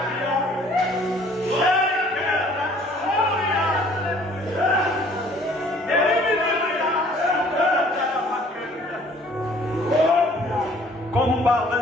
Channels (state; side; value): normal; both; correlation 0.56